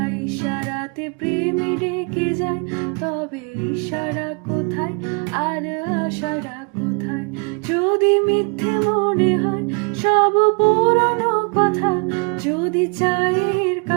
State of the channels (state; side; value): quieter; left; 34.9 dB